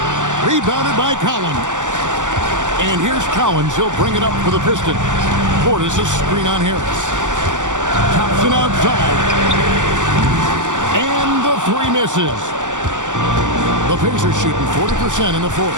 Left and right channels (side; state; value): left; late; 0.86 ms